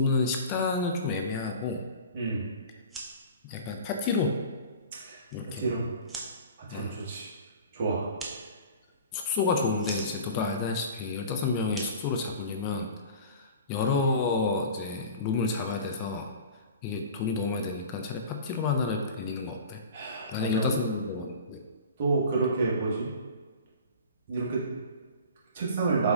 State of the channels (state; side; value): inverted; both; correlation -0.38